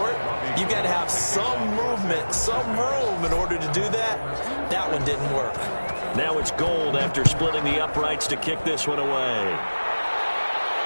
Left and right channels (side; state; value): both; inverted; correlation -1.00